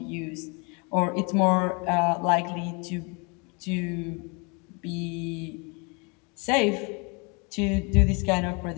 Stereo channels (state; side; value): quieter; right; 31.8 dB